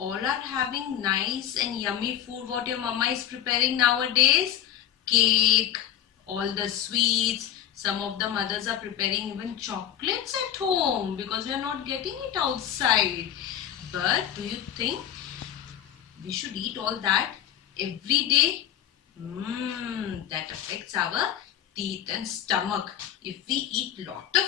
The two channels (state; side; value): quieter; right; 10.9 dB